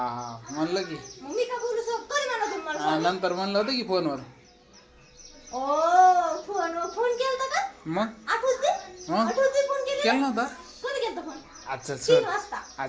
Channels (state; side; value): identical; both; correlation 1.00